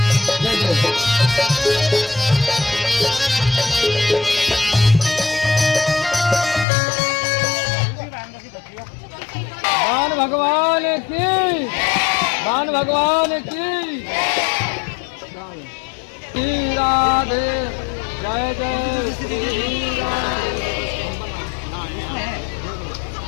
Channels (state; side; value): drops out; right; at 6.7 s